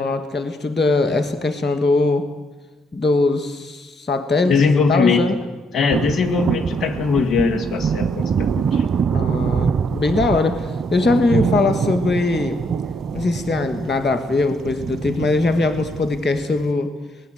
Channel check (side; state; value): both; normal; correlation 0.73